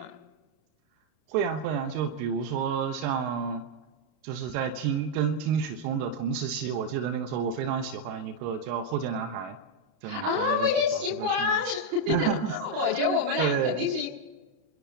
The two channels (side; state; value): left; late; 32 ms